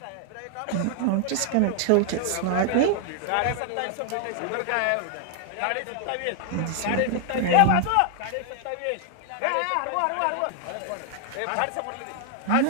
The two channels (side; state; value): both; different; correlation 0.00